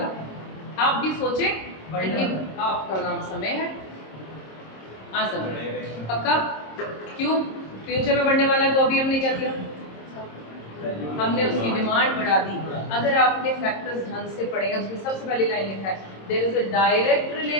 आप भी सोचे, आपका नाम समय है। हाँ समय, पक्का? क्यों फ्यूचर में बढ़ने वाला है? तो अभी हमने क्या किया, हमने उसकी डिमांड बढ़ा दी। अगर आपने फैक्टर्स ढंग से पढ़े हैं, उसमें सबसे पहली लाइन लिखा है there is a direct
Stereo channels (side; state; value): right; late; 26 ms